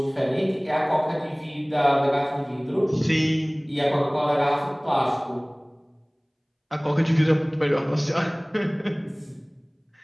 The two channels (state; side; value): identical; both; correlation 1.00